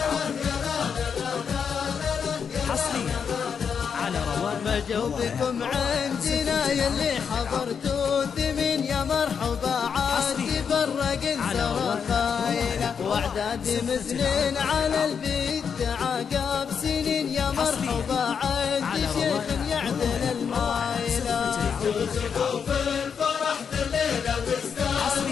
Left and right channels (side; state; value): right; quieter; 6.7 dB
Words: ما جوبكم عندنا يلي حضرتوا ثمين يا مرحبا عاد تفرق انسر خايلة واعداد مزنين على البيت عقاب سنين يا مرحبا عاد شيخ يعدل المايلة ترزقوا في الفرح الليلة